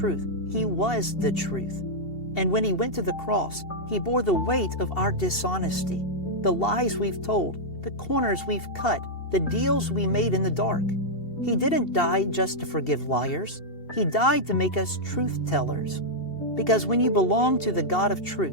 He was the truth. And when He went to the cross, He bore the weight of our dishonesty, the lies we've told, the corners we've cut, the deals we made in the dark. He didn't die just to forgive liars. He died to make us truth tellers. Because when you belong to the God of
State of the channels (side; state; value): right; late; 2.7 ms